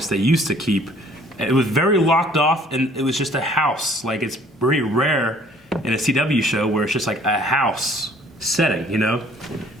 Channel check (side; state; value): both; normal; correlation 0.57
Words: they used to keep. It was very locked off, and it was just a house. Like, it's very rare in a CW show where it's just like a house setting,